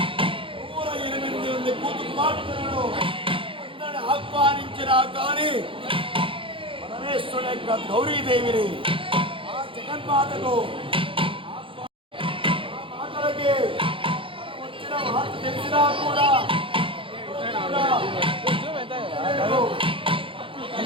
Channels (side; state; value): left; late; 0.25 ms